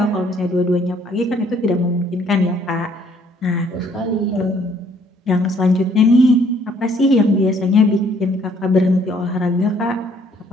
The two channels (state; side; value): normal; both; correlation 0.63